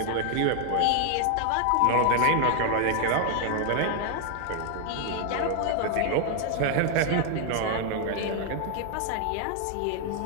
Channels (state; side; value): different; both; correlation 0.00